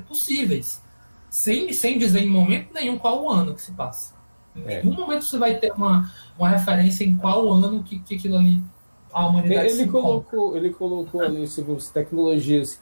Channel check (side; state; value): both; inverted; correlation -1.00